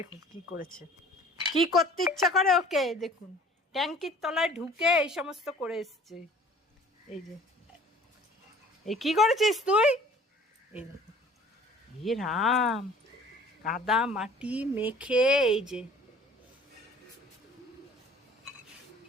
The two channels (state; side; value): normal; both; correlation 0.50